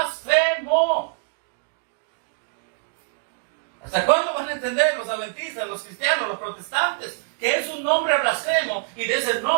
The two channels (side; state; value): left; silent; digital silence